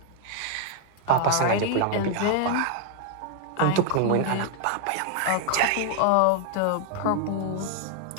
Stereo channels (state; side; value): different; both; correlation 0.00